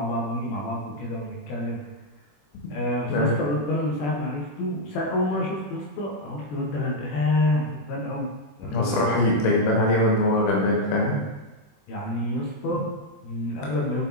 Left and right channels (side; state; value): right; late; 21 ms